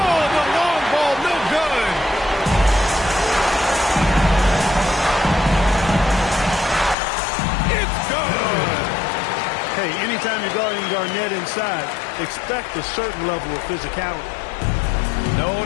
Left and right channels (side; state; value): right; drops out; at 7.0 s